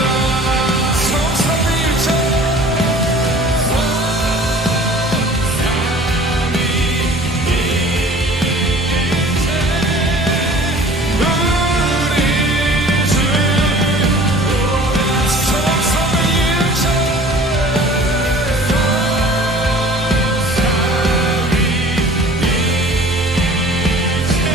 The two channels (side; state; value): both; normal; correlation 0.47